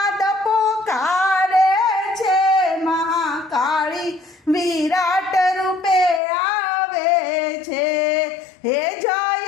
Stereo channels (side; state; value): right; drops out; at 6.2 s